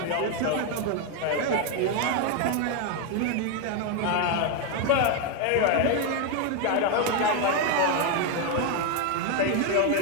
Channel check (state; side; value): different; both; correlation 0.01